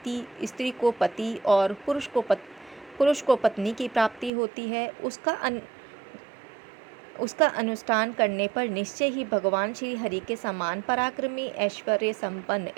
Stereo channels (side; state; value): left; drops out; at 4.3 s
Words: स्त्री को पति और पुरुष को पत्नी की प्राप्ति होती है। उसका अनुष्ठान करने पर निश्चय ही भगवान श्री हरि के समान पराक्रमी, ऐश्वर्य संपन्न